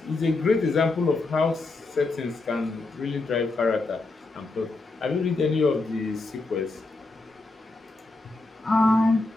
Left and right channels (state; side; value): quieter; right; 3.3 dB